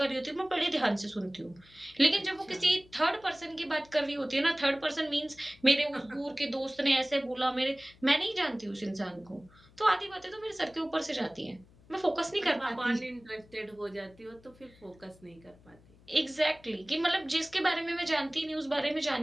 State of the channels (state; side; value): noise; left; hum, 26 dB below the sound